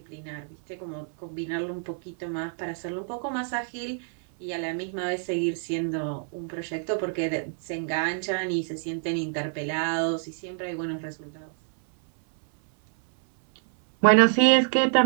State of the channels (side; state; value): left; silent; 60 dB below the other